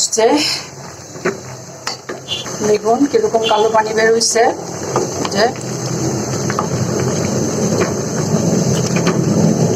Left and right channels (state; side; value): identical; both; correlation 1.00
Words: দেখুন কিরকম কালো পানি বের হয়েছে। যে